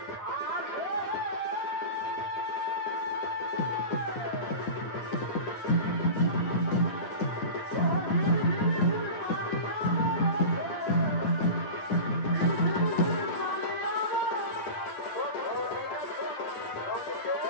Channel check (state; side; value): late; right; 9.6 ms